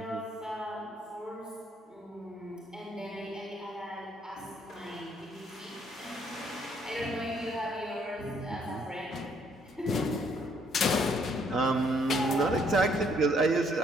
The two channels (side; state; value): both; normal; correlation 0.67